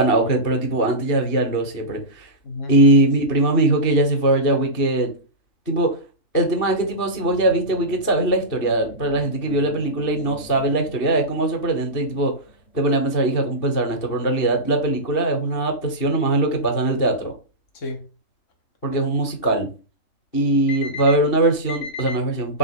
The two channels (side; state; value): right; late; 2.7 ms